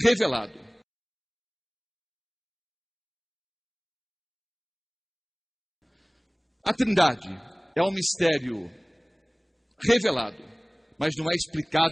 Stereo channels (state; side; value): identical; both; correlation 1.00